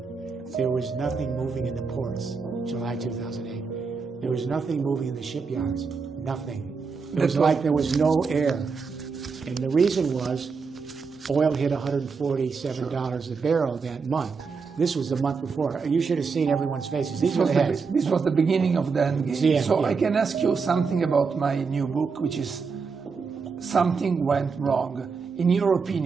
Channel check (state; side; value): quieter; left; 5.1 dB